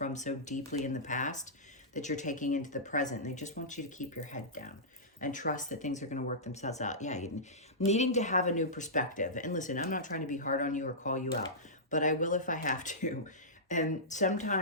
so deeply in the past that you're taking into the present. They just want you to keep your head down and trust that things are going to work themselves out. Yeah, needing to have a new perspective. And listen, I'm not trying to be hard on you or call you out, but I will if I have to. And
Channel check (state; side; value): normal; both; correlation -0.17